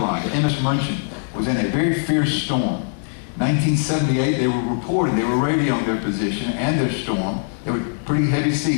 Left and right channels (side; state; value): right; silent; digital silence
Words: the MS Munchen, was in a very fierce storm. 1978, they were reporting, they were radioing their position and their storm. They were pretty heavy